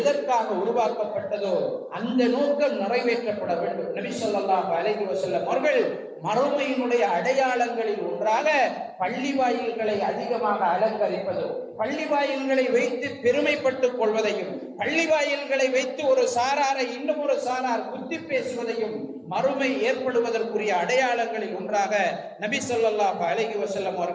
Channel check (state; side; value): identical; both; correlation 1.00